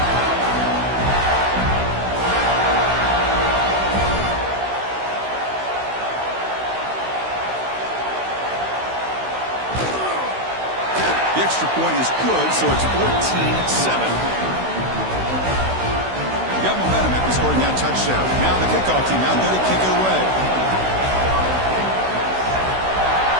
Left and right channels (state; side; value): late; left; 16 ms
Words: The extra point is good, so it's 14-7. scoring that touchdown. Now the kickoff team out there to kick it away.